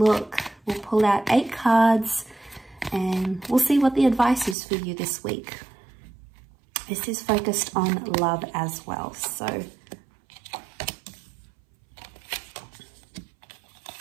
We'll pull out 8 cards and we'll see what the advice is for you this week. This is focused on love as well, so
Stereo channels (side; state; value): left; drops out; at 4.5 s